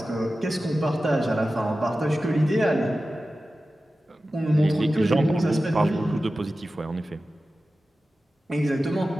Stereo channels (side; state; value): both; normal; correlation 0.94